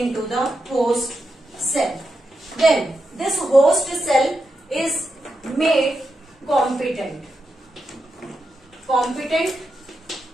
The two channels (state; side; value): normal; both; correlation 0.86